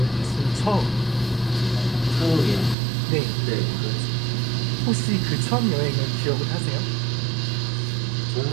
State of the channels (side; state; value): left; drops out; at 2.8 s